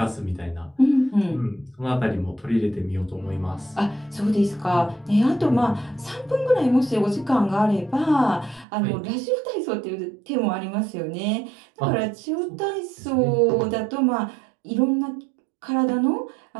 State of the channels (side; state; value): left; drops out; at 8.7 s